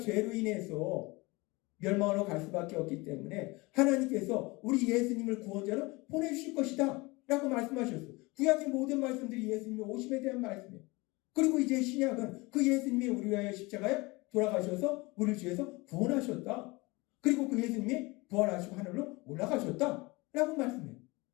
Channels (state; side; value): quieter; right; 24.0 dB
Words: 인해서 멸망으로 갈 수밖에 없기 때문에 하나님께서 우리 예수님을 구원자로 보내주실 것이다 라고 말씀하셨어요. 구약의 모든 말씀들이 예수님의 오심에 대한 말씀이에요. 그리고 이제 신약은 그 예수님이 우리 위하여 십자가에 돌아가셔서 우리를 죄에서 구원하셨다. 그리고 그 예수님이 부활하시고 하늘로 올라가셨다 라고 말씀해요.